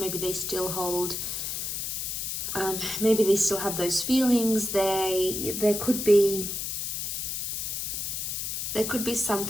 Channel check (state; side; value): noise; left; hiss, 3 dB below the sound